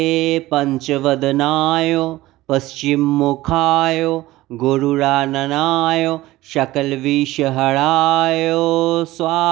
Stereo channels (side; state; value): left; quieter; 17.5 dB